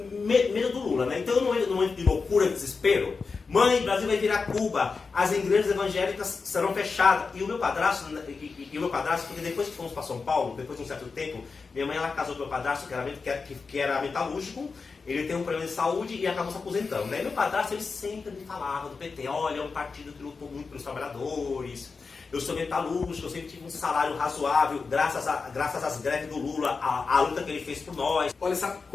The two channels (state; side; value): quieter; right; 4.7 dB